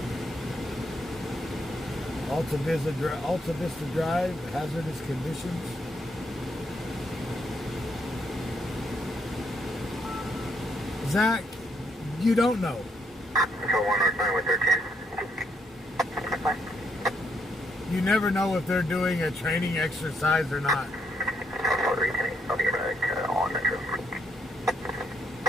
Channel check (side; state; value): both; normal; correlation 0.74